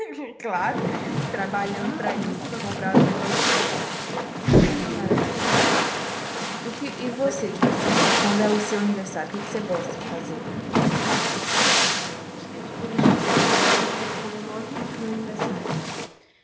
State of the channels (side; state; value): both; identical; correlation 1.00